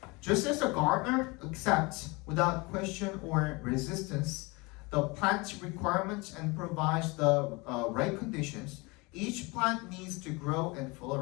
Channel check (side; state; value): right; quieter; 26.0 dB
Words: Just as the gardener accepts without question or resistance the plant's requirements and provides the right conditions, each plant needs to grow and